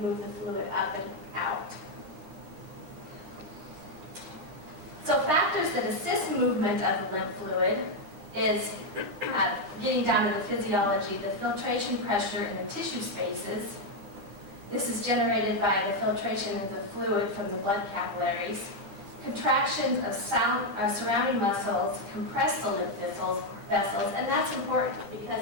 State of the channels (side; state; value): left; late; 10 ms